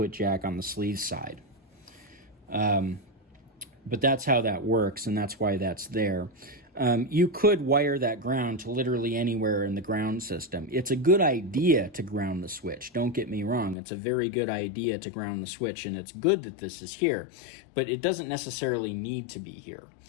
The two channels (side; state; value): right; drops out; at 13.8 s